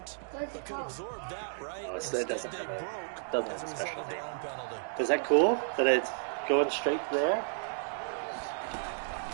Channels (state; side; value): silent; left; digital silence